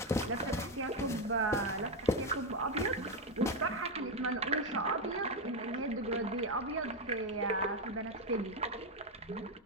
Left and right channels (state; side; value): normal; both; correlation 0.06